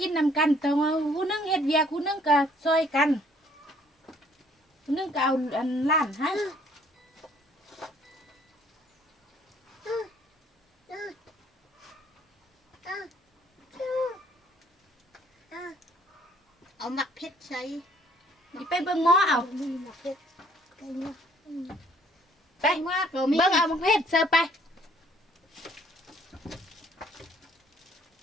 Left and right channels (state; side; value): normal; both; correlation 0.61